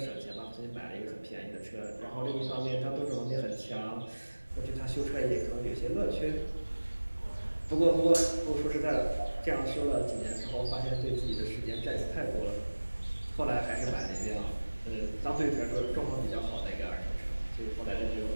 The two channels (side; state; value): both; inverted; correlation -1.00